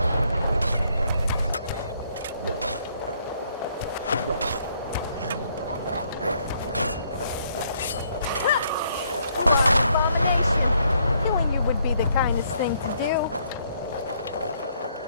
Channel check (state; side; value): inverted; both; correlation -0.70